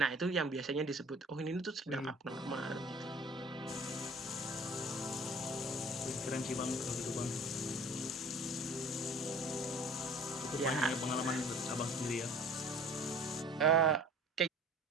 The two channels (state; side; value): normal; both; correlation 0.46